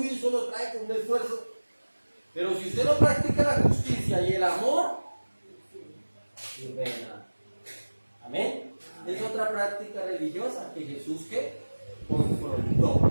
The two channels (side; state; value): both; inverted; correlation -1.00